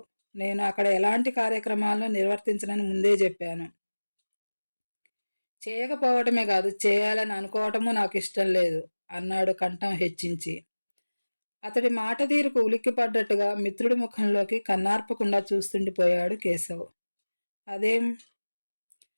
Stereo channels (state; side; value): inverted; both; correlation -1.00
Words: నేను అక్కడ ఎలాంటి కార్యక్రమాలను నిర్వర్తించనని ముందే చెప్పాను. చేయకపోవటమే కాదు, చేయాలని అనుకోవటము నాకు ఇష్టం లేదు అన్నాడు కంఠం హెచ్చించి. అతడి మాట తీరుకు ఉలిక్కిపడ్డట్టుగా మిత్రుడి ముఖంలోకి కన్నార్పకుండా చూస్తుండిపోయాడు కేశవ్. అదేం?